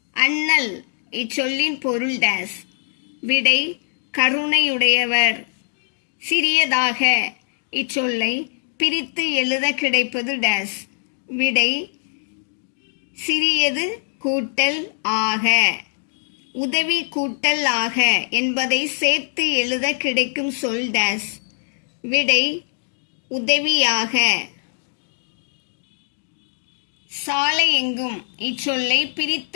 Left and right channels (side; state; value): right; silent; 64 dB below the other